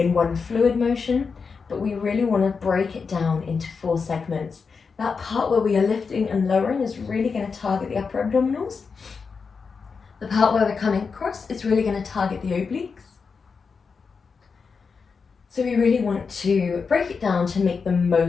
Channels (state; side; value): quieter; right; 5.3 dB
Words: one fluid motion, but we really want to break it down into four segments. That part where we are lifting and lowering is really going to target the upper abdominals. The part where we're coming across is really going to target the obliques. So we really want to break it down to make the